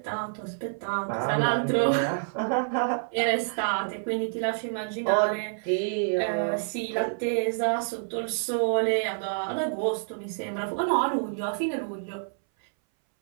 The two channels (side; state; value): left; silent; 60 dB below the other